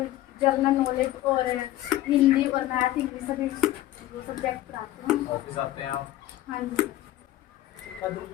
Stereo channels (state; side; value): quieter; right; 14.9 dB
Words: नॉलेज और हिंदी और मैथ, इंग्लिश सभी वो सब्जेक्ट पढ़ाती हूँ। ऑफिस आते हैं आप? हाँ जी सर।